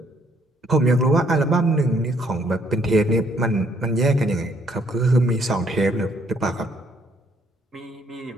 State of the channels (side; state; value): both; normal; correlation 0.67